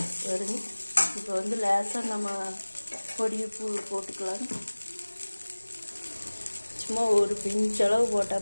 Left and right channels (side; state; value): both; inverted; correlation -1.00